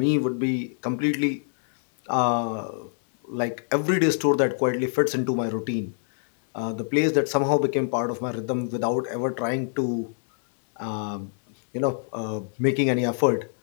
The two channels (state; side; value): silent; right; 61 dB below the other